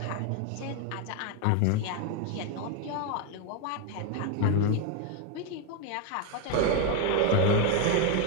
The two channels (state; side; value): different; both; correlation 0.01